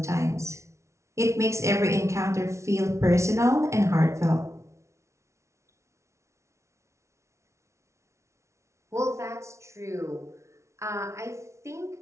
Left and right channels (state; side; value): late; left; 0.13 ms